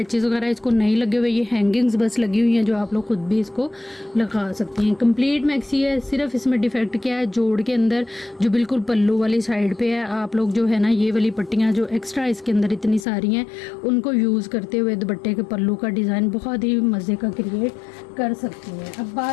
वगैरह इसको नहीं लगे हुए, ये हैंगिंग्स बस लगी हुई हैं जो आप लोग खुद भी इसको लगा सकते हैं। कंप्लीट मैक्सी है। सिर्फ इसमें डिफेक्ट क्या है, जोड़ के अंदर जो बिल्कुल पल्लू वाली साइड पे है, आप लोग जो है ना ये वाली पट्टियाँ जो एक्स्ट्रा इसके अंदर इतनी सारी हैं उनको यूज़ करते हुए दुपट्टे के पल्लू का डिज़ाइन बहुत ही मज़े का क्रिएट कर सकती हैं। अब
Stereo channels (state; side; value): drops out; right; at 13.1 s